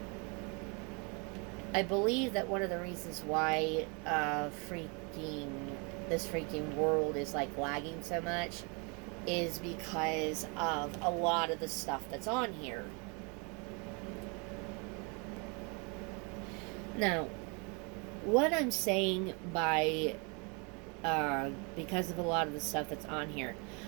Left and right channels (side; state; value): left; quieter; 32.7 dB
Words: I believe that one of the reasons why freaking this freaking world is like lagging so much is because of a lot of the stuff that's on here. Now, what I'm saying by because of a lot of the stuff that's on here,